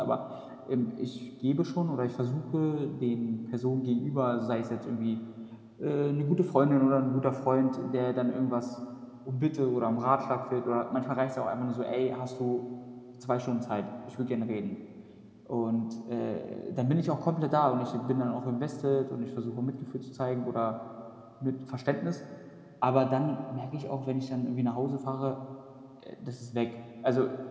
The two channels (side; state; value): both; identical; correlation 1.00